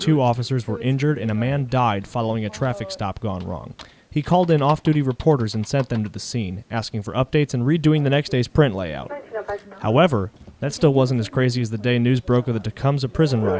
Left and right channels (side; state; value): both; identical; correlation 1.00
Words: officers were injured and a man died following a traffic stop gone wrong. He called in off-duty reporters and sent them to the scene, asking for updates and redoing the next day's print layout. However, that still wasn't as crazy as the day news broke of the Tecumseh prison